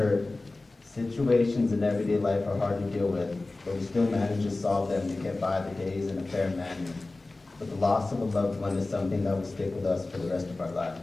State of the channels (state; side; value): quieter; right; 3.2 dB